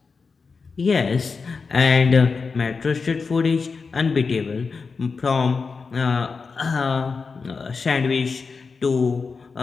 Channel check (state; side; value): quieter; right; 4.8 dB